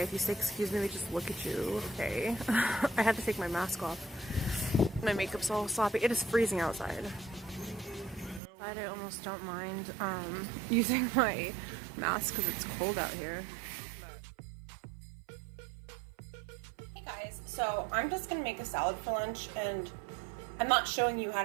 If you say excuse me, they just look at you. Okay. I had to take my mask off. My makeup's all sloppy. It is freezing outside. I almost don't mind using my mask because it's cold out here. Hey guys, so I'm just gonna make a salad for lunch, and I'm not showing you how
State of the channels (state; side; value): drops out; left; at 8.4 s